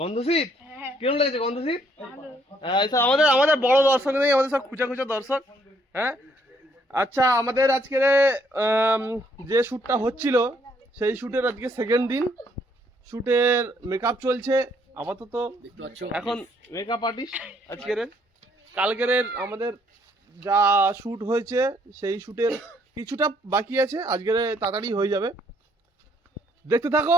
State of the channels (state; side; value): normal; both; correlation 0.68